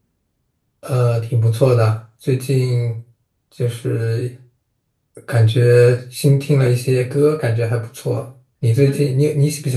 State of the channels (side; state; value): both; identical; correlation 1.00